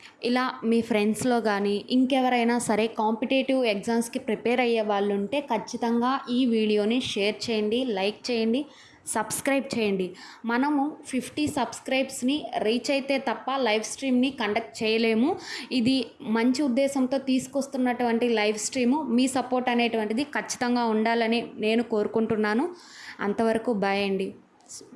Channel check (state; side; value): identical; both; correlation 1.00